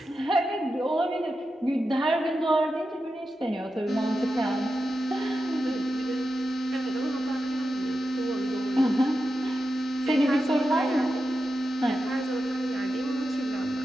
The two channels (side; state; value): both; normal; correlation 0.90